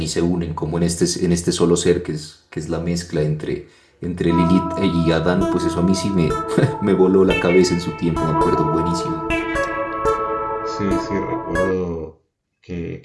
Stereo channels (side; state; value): both; identical; correlation 1.00